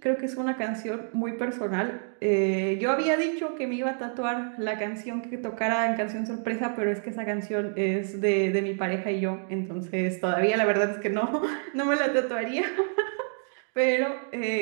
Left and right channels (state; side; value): silent; left; 60 dB below the other